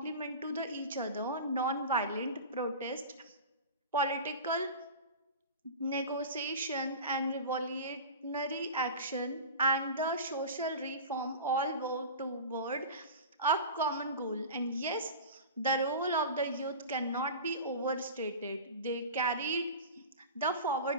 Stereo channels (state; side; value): inverted; both; correlation -0.32